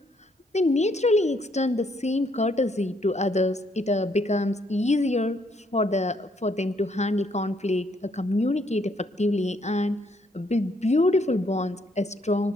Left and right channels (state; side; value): normal; both; correlation 0.70